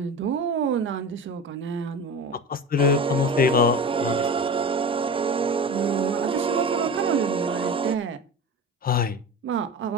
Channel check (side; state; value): both; normal; correlation 0.31